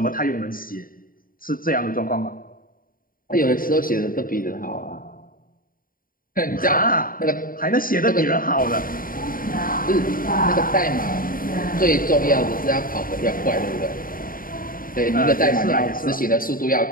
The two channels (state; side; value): late; right; 0.41 ms